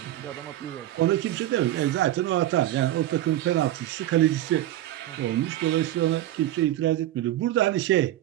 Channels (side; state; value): left; quieter; 14.0 dB